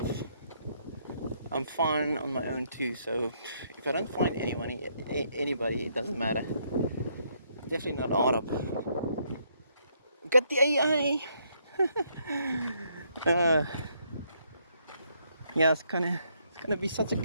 I'm fine on my own too. So if I don't find anybody, it doesn't matter. Definitely not Arab. Got the AI. Yeah, it's gonna be such a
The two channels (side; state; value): both; inverted; correlation -0.72